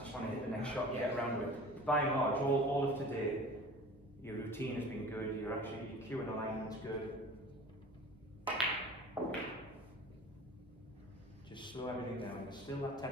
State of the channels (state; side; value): normal; both; correlation 0.41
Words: want to hit the next shot and get around with it. By and large, all of today, your routine has been good, your cue and alignment's good. Just slow everything down. There's still that